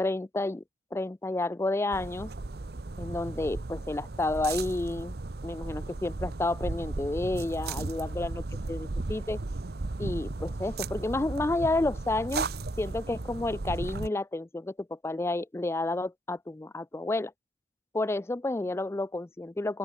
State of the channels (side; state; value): both; normal; correlation 0.78